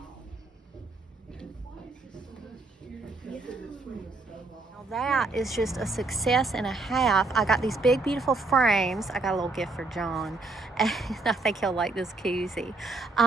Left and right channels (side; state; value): left; quieter; 3.5 dB